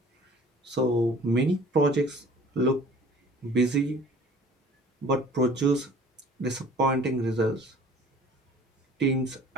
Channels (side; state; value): both; normal; correlation 0.49